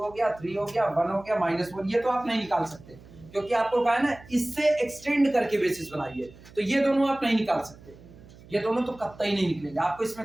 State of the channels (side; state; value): right; noise; hum, 21 dB below the sound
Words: हो गया 3 हो गया 1 हो गया -1 ये तो आप नहीं निकाल सकते क्योंकि आपको कहा है ना इससे एक्सटेंड करके बेसिस बनाइए तो ये दोनों आप नहीं निकाल सकते। ये दोनों तो कतई नहीं निकलेंगे आपको